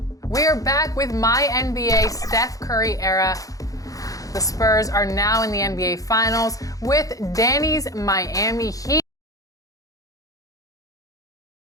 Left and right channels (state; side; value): late; right; 0.17 ms